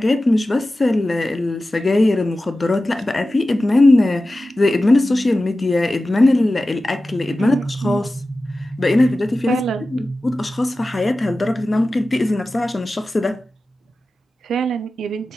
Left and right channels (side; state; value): both; normal; correlation 0.95